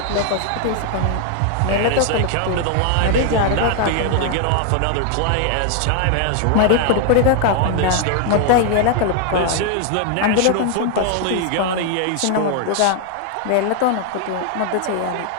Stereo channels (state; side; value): different; both; correlation 0.00